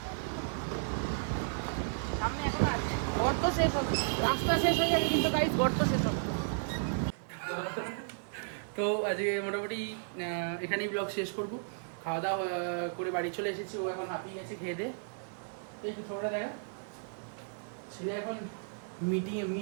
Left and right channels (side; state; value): left; silent; digital silence